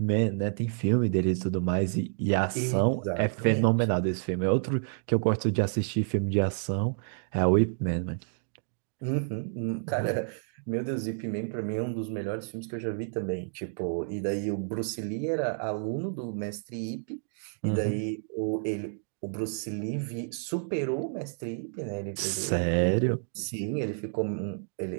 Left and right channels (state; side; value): silent; left; digital silence